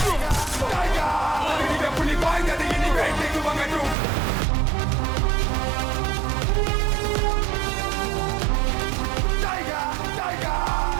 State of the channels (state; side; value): drops out; left; at 4.0 s